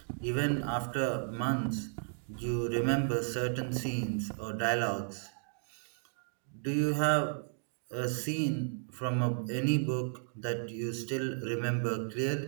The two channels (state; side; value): silent; left; digital silence